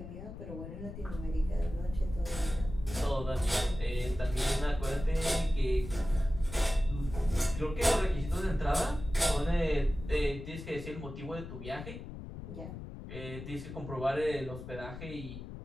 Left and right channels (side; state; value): left; noise; rumble, 10 dB below the sound